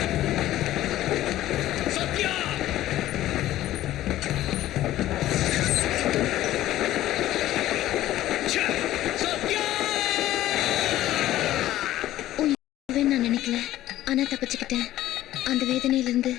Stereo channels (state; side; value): quieter; right; 14.3 dB